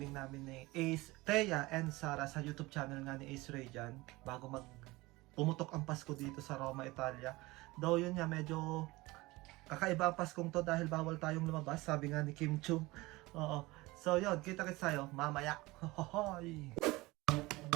namin ni Ace, Thea and Sarah sa YouTube channel nga ni Ace Ray dyan, bago pumutok ang Pasko dito sa Roma, Italia. Though yun nga, medyo kakaiba ang Paskong to dahil bawal tayong lumabas, sabi nga ni Kim Chu. So yun, kita-kits tayo mamaya. Hohoy!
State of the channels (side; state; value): left; quieter; 21.2 dB